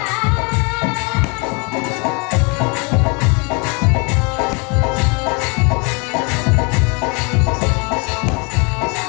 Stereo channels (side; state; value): right; quieter; 32.2 dB